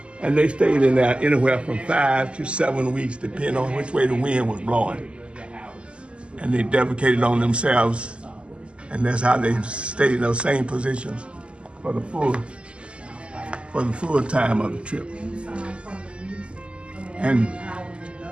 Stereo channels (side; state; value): left; late; 0.054 ms